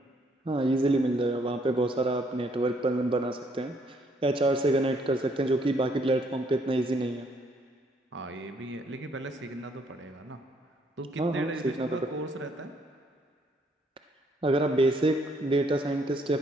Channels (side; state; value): both; normal; correlation 0.68